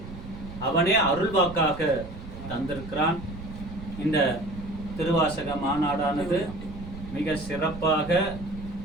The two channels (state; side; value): noise; right; rumble, 12 dB below the sound